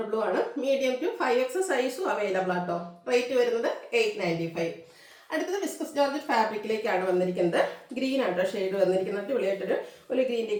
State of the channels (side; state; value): both; identical; correlation 1.00